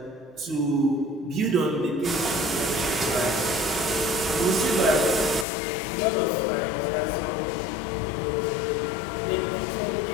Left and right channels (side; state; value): right; drops out; at 5.5 s